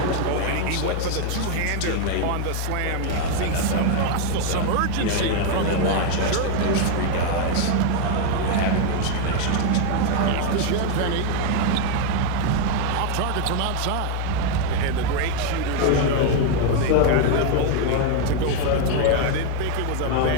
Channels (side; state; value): both; different; correlation 0.00